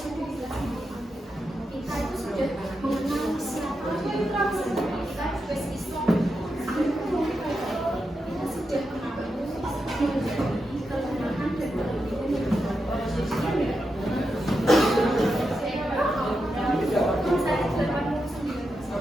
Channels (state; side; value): normal; both; correlation 0.87